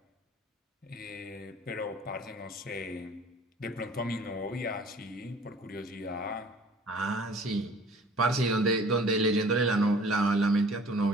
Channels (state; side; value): normal; both; correlation 0.49